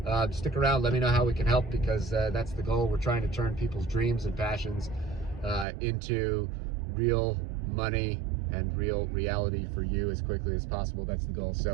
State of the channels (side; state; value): left; drops out; at 5.7 s